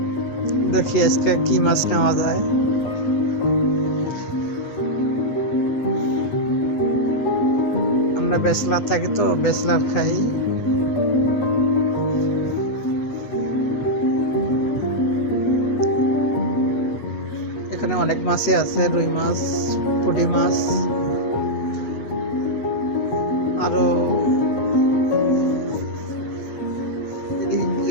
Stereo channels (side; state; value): right; late; 8.3 ms